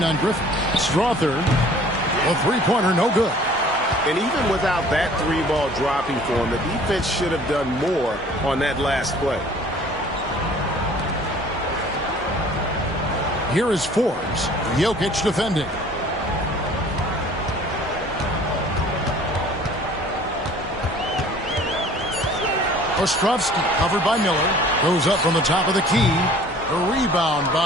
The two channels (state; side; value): normal; both; correlation 0.51